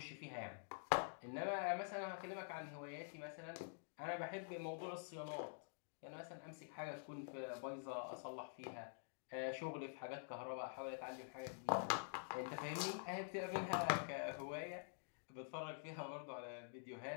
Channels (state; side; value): silent; right; digital silence